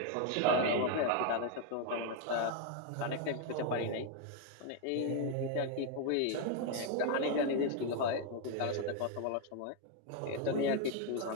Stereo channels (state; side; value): different; both; correlation 0.01